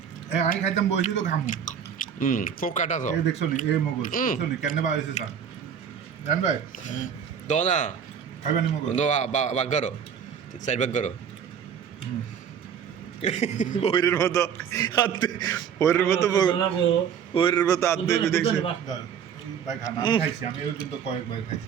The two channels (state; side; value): quieter; left; 7.9 dB